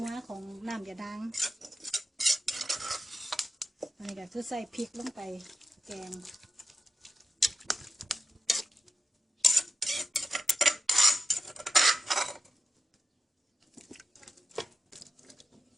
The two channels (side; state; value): both; normal; correlation 0.90